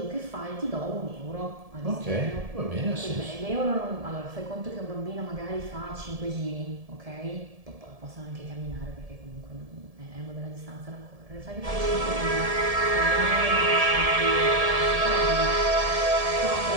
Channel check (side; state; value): left; late; 1.7 ms